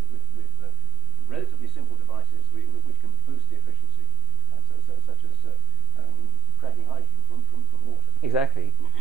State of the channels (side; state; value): both; normal; correlation 0.03